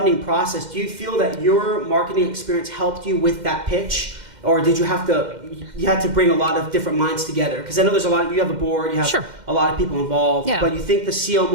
process, do you feel that your marketing experience helped you with that pitch? Or did you had to bring a lot of different minds together? Because I know there's a lot, you have a board, you have a lot of people involved, but you think the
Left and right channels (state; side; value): late; left; 2.1 ms